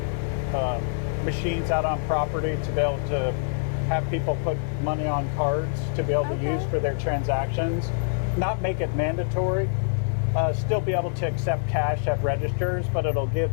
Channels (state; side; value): silent; right; digital silence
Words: machines out on property to be able to have people put money on cards to be able to use for their transactions. Not make it mandatory. Still be able to accept cash at registers, but it'll give